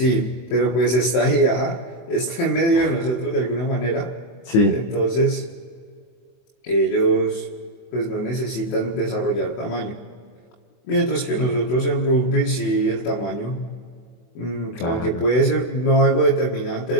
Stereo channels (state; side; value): late; right; 24 ms